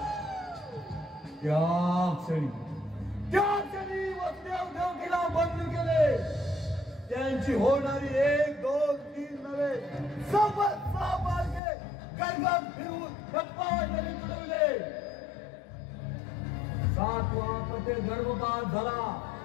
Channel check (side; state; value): right; drops out; at 11.6 s